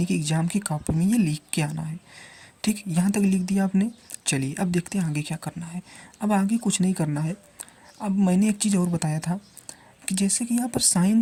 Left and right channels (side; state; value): both; identical; correlation 1.00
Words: कि एग्ज़ाम की कॉपी में ये लिख के आना है। ठीक, यहाँ तक लिख दिया आपने। चलिए अब देखते हैं आगे क्या करना है। अब आगे कुछ नहीं करना है। अब मैंने एक चीज़ और बताया था कि जैसे कि यहाँ पर